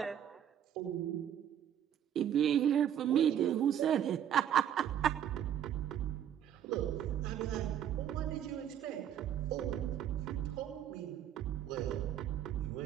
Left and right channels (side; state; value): left; quieter; 10.0 dB